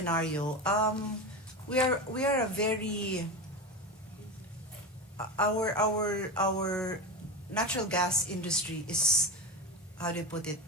We are a very our natural gas industry is, how do you put it?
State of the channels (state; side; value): normal; both; correlation 0.20